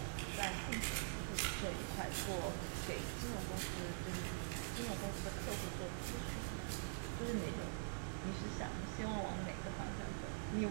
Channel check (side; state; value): left; silent; digital silence